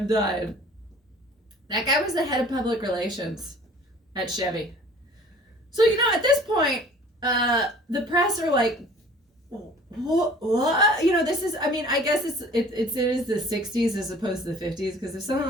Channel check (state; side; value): normal; both; correlation 0.49